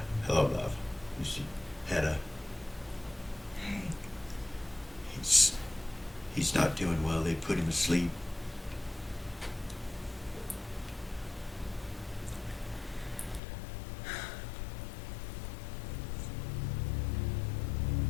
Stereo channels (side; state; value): right; drops out; at 13.4 s